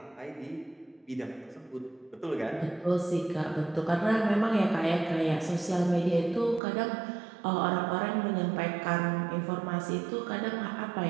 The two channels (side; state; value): left; drops out; at 6.6 s